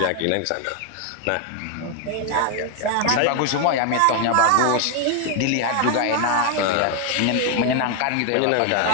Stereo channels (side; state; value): both; different; correlation 0.01